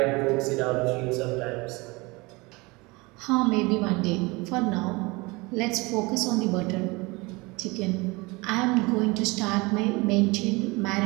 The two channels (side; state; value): left; quieter; 24.7 dB